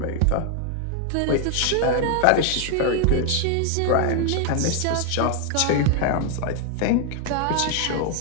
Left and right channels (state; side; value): different; both; correlation 0.00